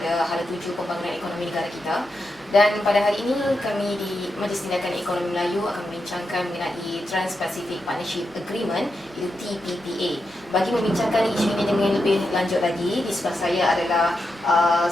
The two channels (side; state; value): both; normal; correlation 0.86